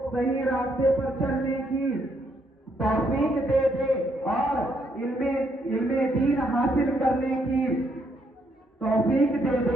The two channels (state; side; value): normal; both; correlation 0.73